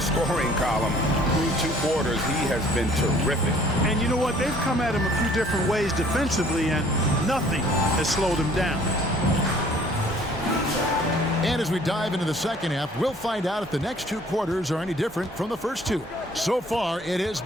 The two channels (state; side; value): normal; both; correlation 0.56